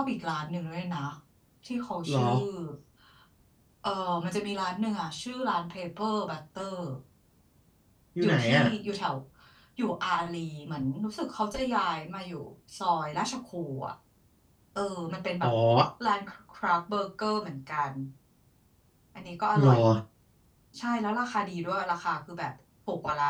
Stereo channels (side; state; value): both; identical; correlation 1.00